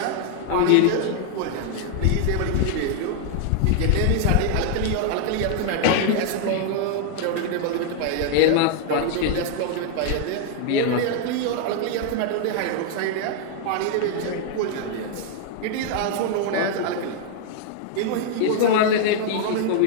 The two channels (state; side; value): different; both; correlation 0.00